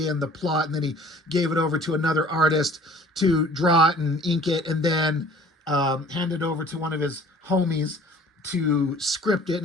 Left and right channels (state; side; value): normal; both; correlation 0.50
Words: and the plot, and then he gave it over to another artist to draw it and ink it, and then hand it over to one of his homies to script it